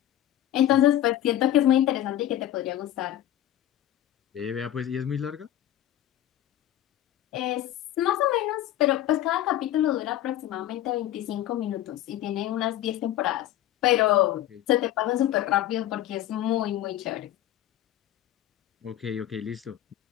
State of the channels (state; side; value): quieter; right; 12.7 dB